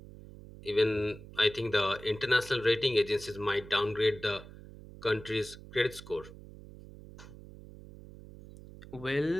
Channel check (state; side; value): noise; right; hum, 17 dB below the sound